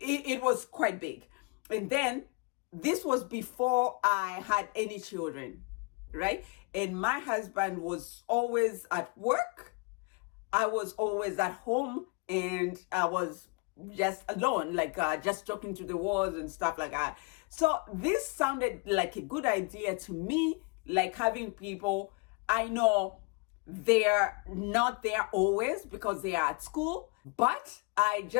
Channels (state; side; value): quieter; right; 30.3 dB